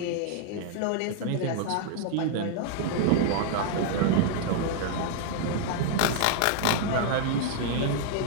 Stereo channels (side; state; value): both; different; correlation 0.00